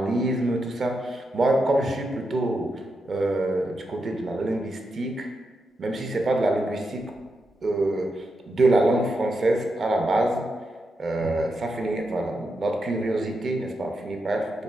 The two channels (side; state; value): both; normal; correlation 0.85